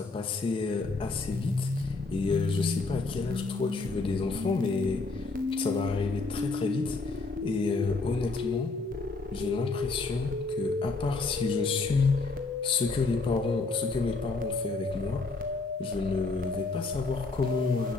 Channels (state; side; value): quieter; right; 3.7 dB